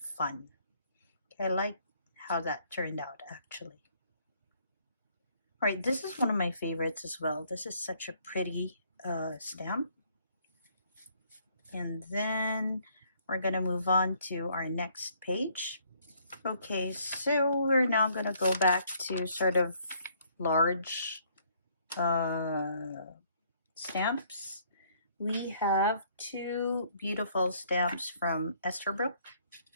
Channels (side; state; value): both; inverted; correlation -0.65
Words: Okay, I like how that turned out actually. All right, this is one of my favorites as well. This is such a pretty stamp. And then we're going to move on to our next page. Okay, so we're now going to go back to sort of large stamps. We have two beautiful stamps from Esterbrook.